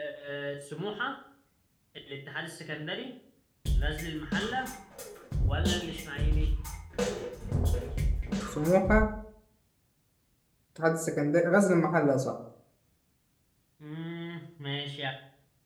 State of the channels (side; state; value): both; identical; correlation 1.00